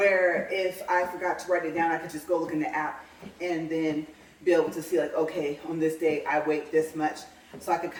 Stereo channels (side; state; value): both; identical; correlation 1.00